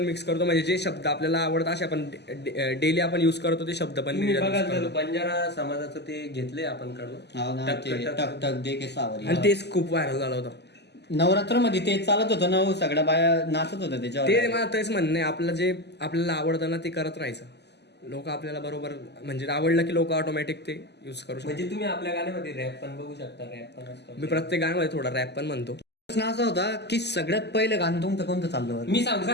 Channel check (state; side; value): late; right; 0.50 ms